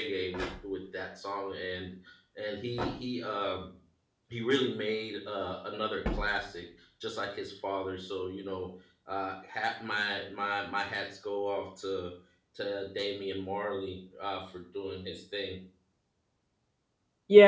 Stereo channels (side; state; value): both; identical; correlation 1.00